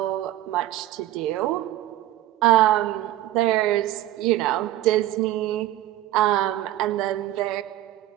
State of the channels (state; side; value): quieter; left; 14.4 dB